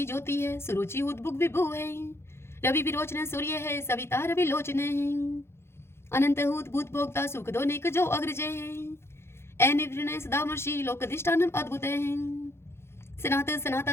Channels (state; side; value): late; right; 0.12 ms